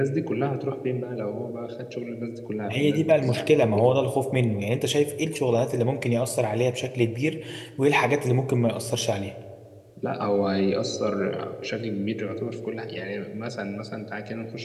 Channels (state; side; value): identical; both; correlation 1.00